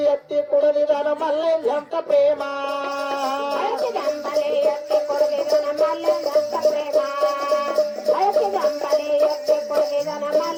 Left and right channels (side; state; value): both; identical; correlation 1.00